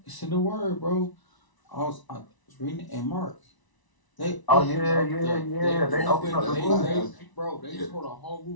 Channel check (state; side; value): late; right; 1.0 ms